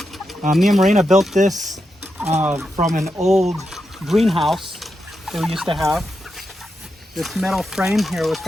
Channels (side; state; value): both; normal; correlation 0.86